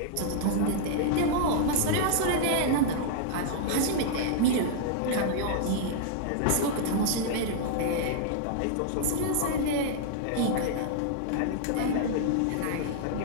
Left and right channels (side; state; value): both; different; correlation -0.01